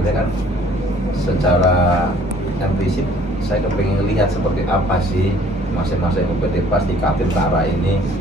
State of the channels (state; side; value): normal; both; correlation 0.56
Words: kan secara prinsip saya kepengen lihat seperti apa sih masing-masing UPT Pas di Kaltim Utara ini